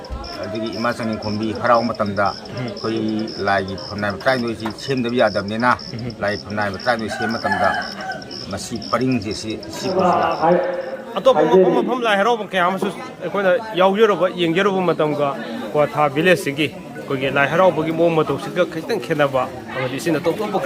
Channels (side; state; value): both; identical; correlation 1.00